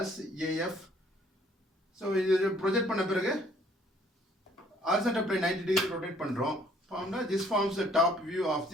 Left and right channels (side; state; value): both; normal; correlation 0.61